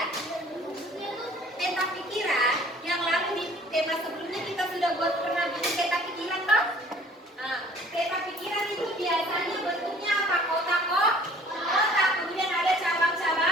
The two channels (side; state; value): both; normal; correlation 0.54